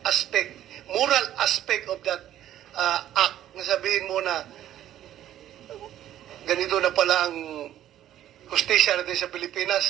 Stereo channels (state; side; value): quieter; left; 12.0 dB